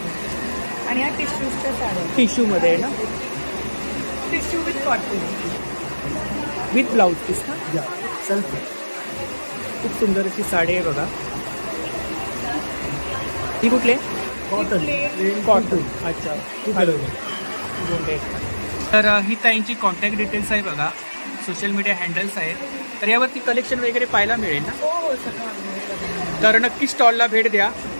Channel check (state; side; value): inverted; both; correlation -1.00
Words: आणि ह्या टिश्यूजच्या साड्या. टिश्यूमध्ये आहे ना? Tissue with cotton with blouse piece ना? सेल्फ. खूप सुंदर अशी साडी आहे बघा. ही कुठली? कॉटन. अच्छा. तर ही ताईंची कॉन्टॅक्ट डिटेल्स आहे बघा. सोशल मीडिया हँडल्स आहेत. तर यावरती कलेक्शन वगैरे पाहायला मिळेल ना? हो, सगळं. तर नक्की स्टॉलला भेट द्या.